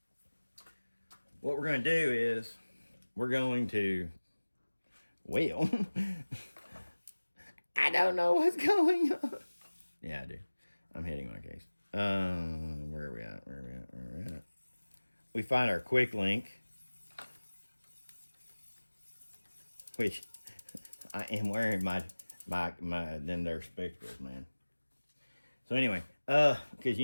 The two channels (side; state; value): both; inverted; correlation -1.00